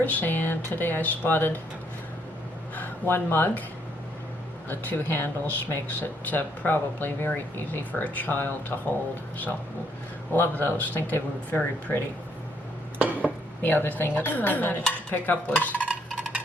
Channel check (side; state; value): both; normal; correlation 0.71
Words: and today I spotted one mug. The two handles makes it probably very easy for a child to hold, so love those. Think they were very pretty. The other thing that I managed to pick up was